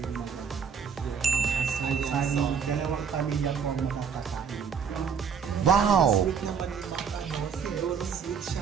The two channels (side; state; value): left; quieter; 6.7 dB